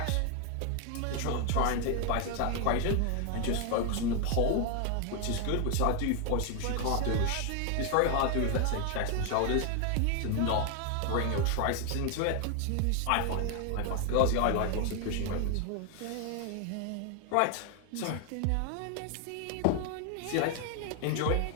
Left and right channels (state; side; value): different; both; correlation 0.00